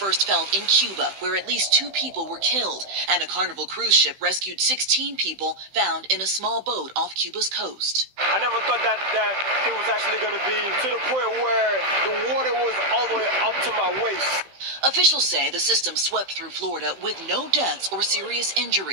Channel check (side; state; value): left; late; 16 ms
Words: felt in Cuba, where at least 2 people were killed, and a Carnival cruise ship rescued 16 people found in a small boat off Cuba's coast. I never thought that it was actually going to be to the point where the water was all the way up to my waist. Officials say the system swept through Florida with no deaths or serious